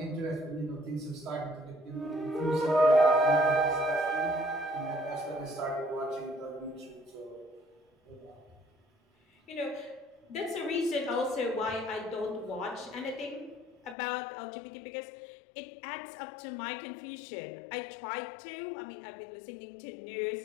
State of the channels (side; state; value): right; drops out; at 14.0 s